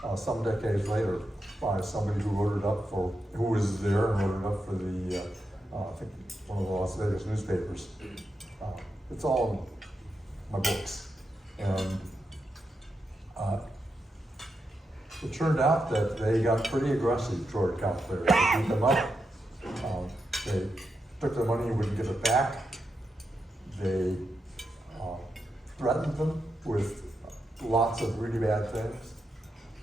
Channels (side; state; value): both; normal; correlation 0.86